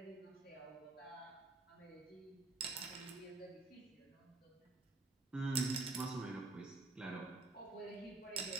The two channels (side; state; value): left; quieter; 3.2 dB